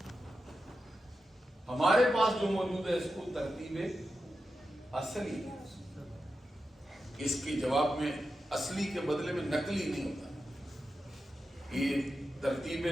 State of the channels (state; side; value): normal; both; correlation 0.90